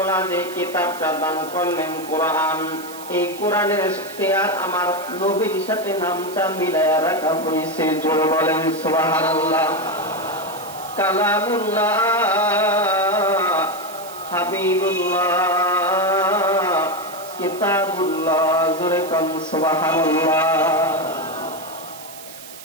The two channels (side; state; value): right; noise; hiss, 16 dB below the sound